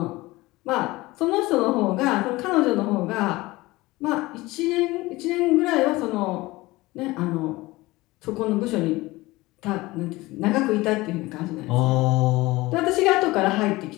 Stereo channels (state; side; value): quieter; right; 20.3 dB